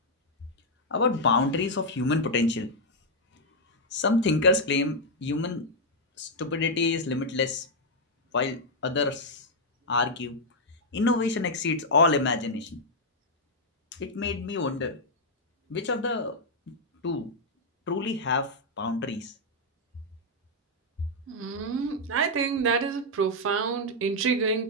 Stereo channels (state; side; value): normal; both; correlation -0.02